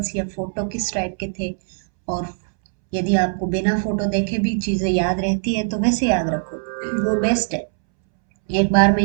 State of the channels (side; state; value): left; silent; 65 dB below the other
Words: या फोटो किस टाइप के थे, और यदि आपको बिना फोटो देखे भी चीजें याद रहती है तो वैसे याद रखो, वो बेस्ट है। एक बार में